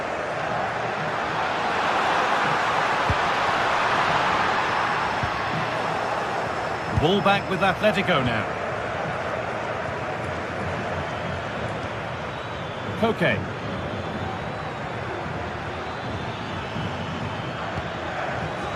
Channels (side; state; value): both; identical; correlation 1.00